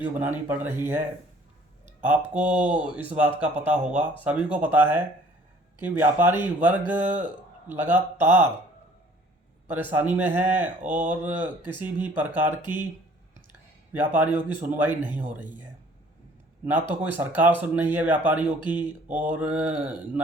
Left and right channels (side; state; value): both; normal; correlation 0.55